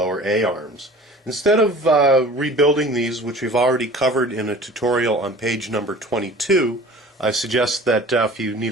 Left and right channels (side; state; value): both; normal; correlation 0.44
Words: A-arms. Instead of rebuilding these, which we've already covered in a tutorial on page number 22, I suggest that if you need